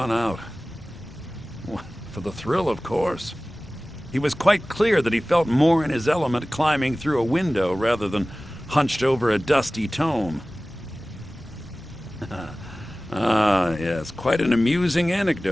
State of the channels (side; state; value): both; normal; correlation 0.97